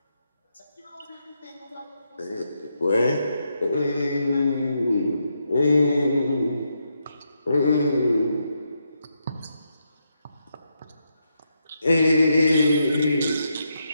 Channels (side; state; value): both; inverted; correlation -0.82